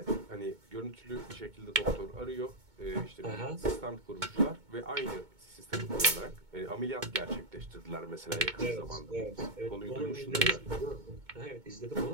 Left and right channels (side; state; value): left; late; 2.2 ms